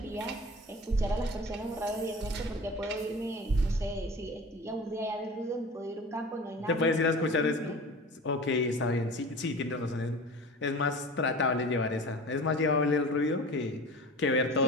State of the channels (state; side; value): normal; both; correlation 0.37